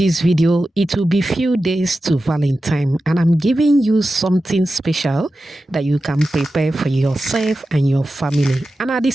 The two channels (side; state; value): both; normal; correlation 0.93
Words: video, it will be few days to Valentine, and I'm giving you something special that you can prepare for yourself and your family, and at the